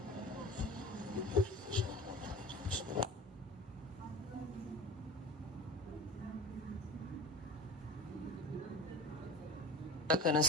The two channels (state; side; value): normal; both; correlation 0.35